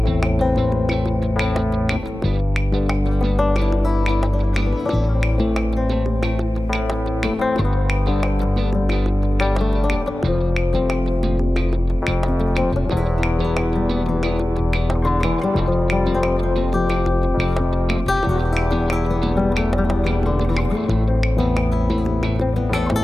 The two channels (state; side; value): normal; both; correlation 0.95